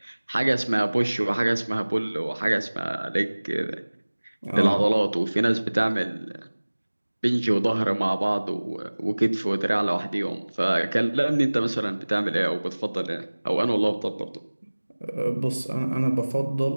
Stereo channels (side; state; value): both; inverted; correlation -1.00